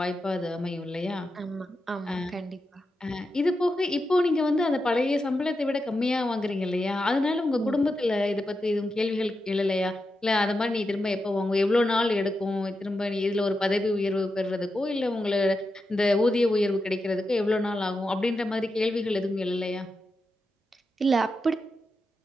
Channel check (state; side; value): normal; both; correlation 0.88